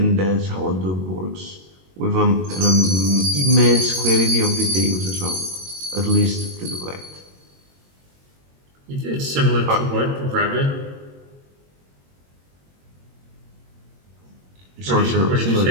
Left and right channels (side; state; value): left; late; 22 ms